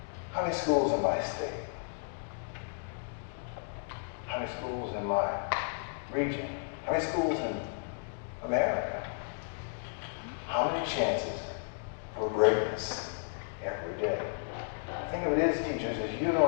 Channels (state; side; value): silent; right; digital silence